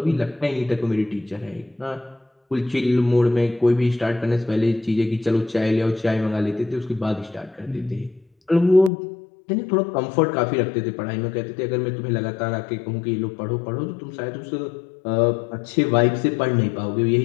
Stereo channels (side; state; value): right; drops out; at 8.9 s